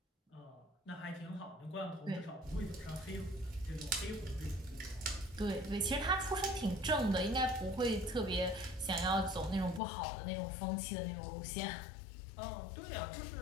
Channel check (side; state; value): right; drops out; at 9.8 s